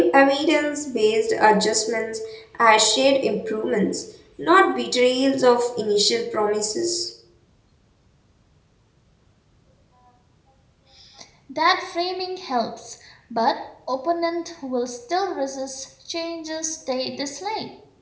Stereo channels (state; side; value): identical; both; correlation 1.00